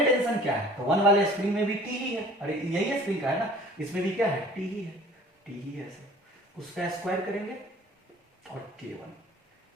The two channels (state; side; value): normal; both; correlation 0.49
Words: टेंशन क्या है, तो 1 वाले स्प्रिंग में भी T ही है। अरे यही स्प्रिंग का है ना, इसमें भी क्या है T ही है, T ही है सर। उसका स्क्वायर करेंगे और K1,